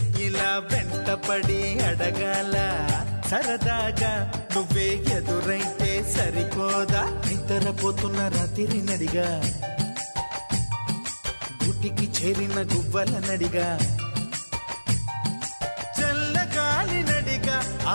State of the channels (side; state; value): both; inverted; correlation -1.00